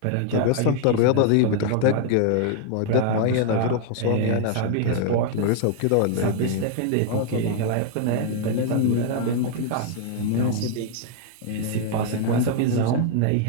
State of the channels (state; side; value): different; both; correlation 0.00